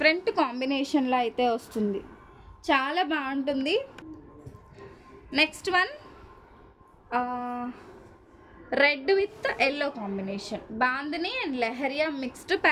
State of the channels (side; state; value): both; identical; correlation 1.00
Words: కాంబినేషన్లో అయితే వస్తుంది. చాలా బాగుంటుంది. Next one red with yellow combination, bandhani and leheriya mixed